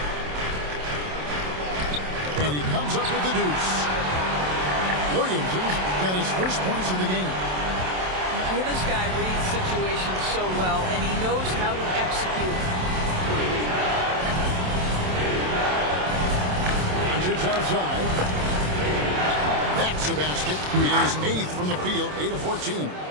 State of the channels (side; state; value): left; late; 27 ms